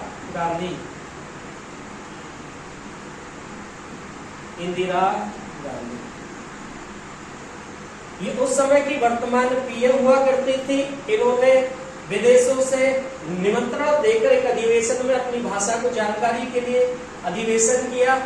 गांधी, इंदिरा गांधी ये उस समय की वर्तमान पीएम हुआ करती थी। इन्होंने विदेशों से निमंत्रण देकर एक अधिवेशन में अपनी भाषा को जानकारी के लिए अधिवेशन किया।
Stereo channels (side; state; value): both; identical; correlation 1.00